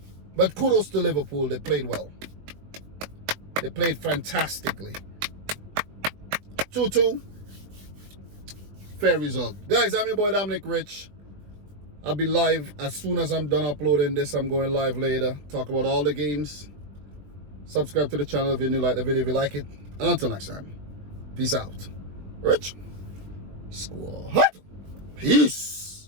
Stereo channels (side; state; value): left; late; 20 ms